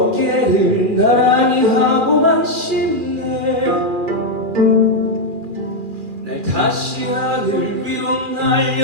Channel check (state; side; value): late; left; 2.4 ms